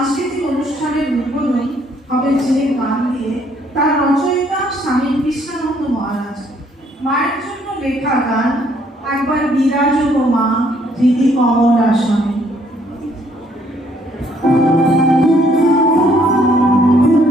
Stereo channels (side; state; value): both; normal; correlation 0.66